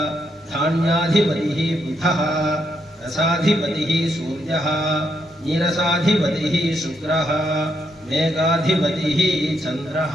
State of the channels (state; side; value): normal; both; correlation 0.78